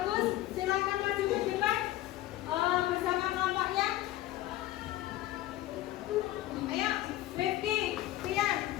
Silakan maju ke depan bersama kelompoknya. Ayo, Rifki, Tian,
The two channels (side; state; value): right; quieter; 15.2 dB